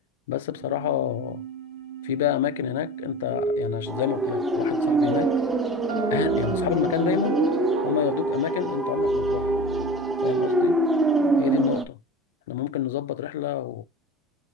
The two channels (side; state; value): both; normal; correlation 0.33